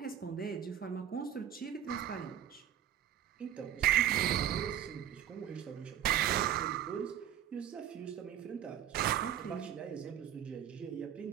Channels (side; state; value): left; quieter; 10.5 dB